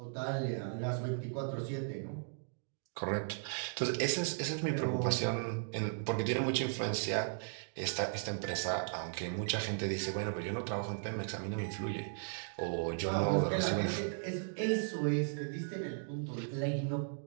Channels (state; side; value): silent; left; digital silence